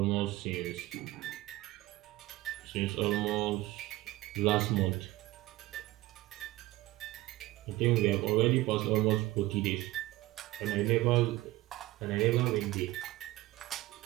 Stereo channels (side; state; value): left; quieter; 17.9 dB